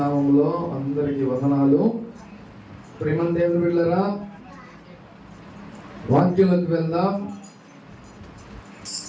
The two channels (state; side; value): identical; both; correlation 1.00